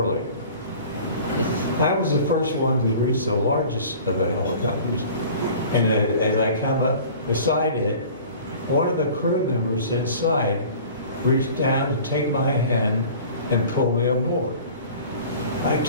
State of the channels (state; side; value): inverted; both; correlation -0.44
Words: I was the first one to reach the largest of the helicopters, and as I come up beside it, one of the crew members inside reached down to take my hand and pull me aboard. I